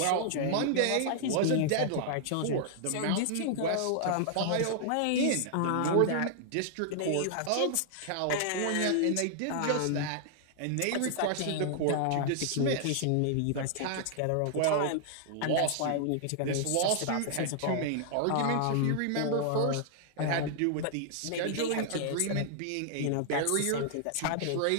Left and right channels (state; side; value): different; both; correlation -0.01